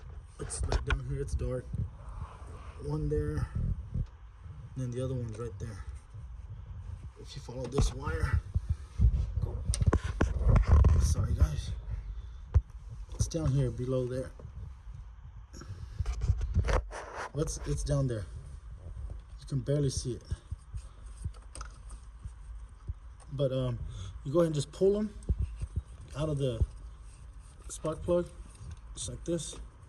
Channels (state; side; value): identical; both; correlation 1.00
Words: It's like down here, it's dark. One there, and then the other one's right there. If you follow this wire, sorry guys, it's down here below there. It's down there. You can barely see it. But you go ahead and just pull them out of the spark plug, just like this.